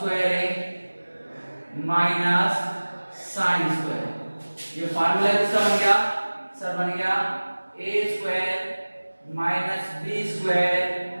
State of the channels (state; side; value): inverted; both; correlation -1.00